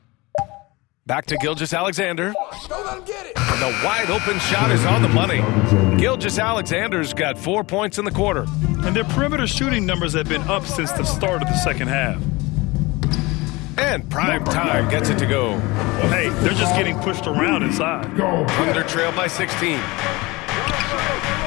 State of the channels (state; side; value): quieter; right; 23.0 dB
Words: Back to Gilgeous-Alexander. And the wide open shot is on the money. Gilgeous-Alexander's got 4 points in the quarter. And their perimeter shooting numbers have been up since the start of the second half. And Prime Time gets it to go. Well, hey, they're just getting pushed around inside. Thunder trail by 16.